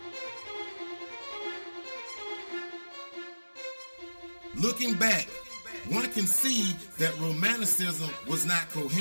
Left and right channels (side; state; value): both; inverted; correlation -1.00